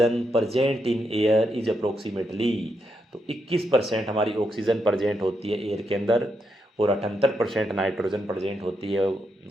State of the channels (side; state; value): both; normal; correlation 0.82